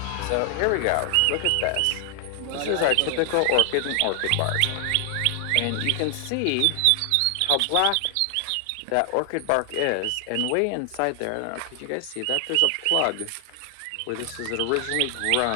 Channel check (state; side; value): different; both; correlation 0.00